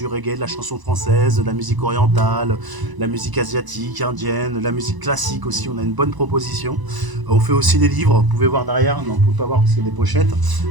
reggae, de la chanson française, de la musique orientale, la musique asiatique, indienne, la musique classique aussi. On a une bonne proposition. On fait aussi des livres. Vous pouvez voir derrière. Non, vous ne pouvez pas voir parce qu'il y a des pochettes.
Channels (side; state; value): left; late; 1.0 ms